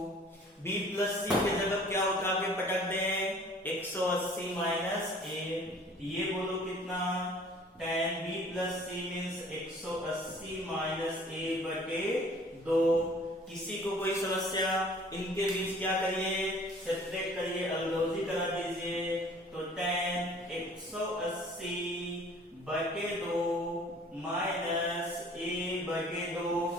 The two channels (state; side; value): normal; both; correlation 0.52